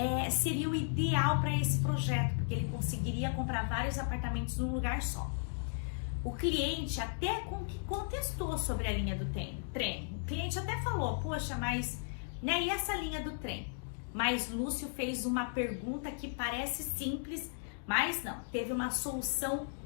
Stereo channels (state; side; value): silent; right; digital silence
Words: seria o ideal para esse projeto, porque ele conseguiria comprar vários apartamentos num lugar só. O cliente até contestou sobre a linha do trem. O cliente até falou, poxa, mas, né, e essa linha do trem? Mas Lúcio fez uma pergunta que parece simples, mas não, teve uma solução